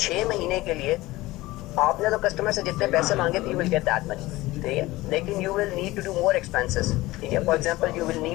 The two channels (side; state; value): right; quieter; 18.8 dB